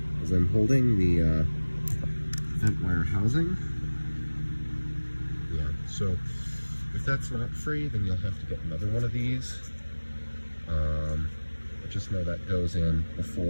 as I'm holding the vent wire housing. Yeah, so if that's not free, then you'll have to get another one of these. Just know that goes in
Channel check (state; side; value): inverted; both; correlation -1.00